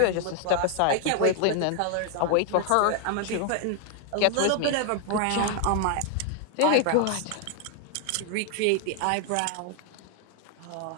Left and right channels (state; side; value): different; both; correlation 0.00